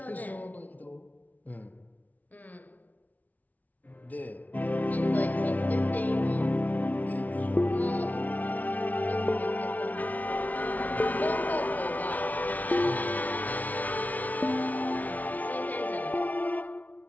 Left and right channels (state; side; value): late; right; 0.076 ms